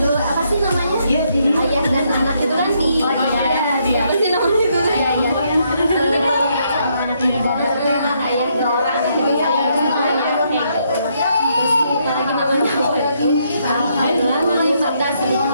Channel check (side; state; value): both; inverted; correlation -0.74